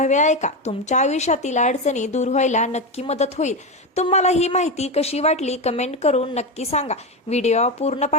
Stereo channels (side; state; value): both; normal; correlation 0.15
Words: ऐका। तुमच्या आयुष्यातील अडचणी दूर व्हायला नक्की मदत होईल। तुम्हाला ही माहिती कशी वाटली कमेंट करून नक्की सांगा। व्हिडिओ पूर्ण